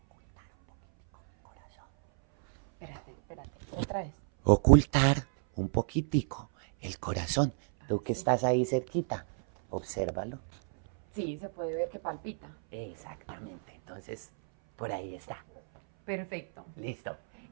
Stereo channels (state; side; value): silent; left; 57 dB below the other